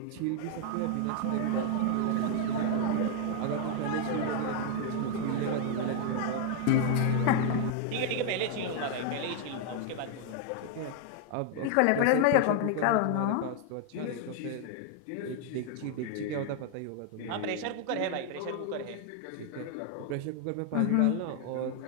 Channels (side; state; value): both; different; correlation 0.00